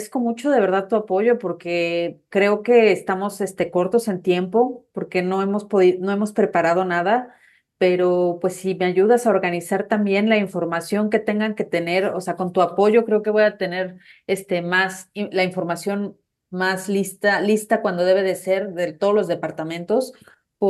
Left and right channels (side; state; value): both; identical; correlation 1.00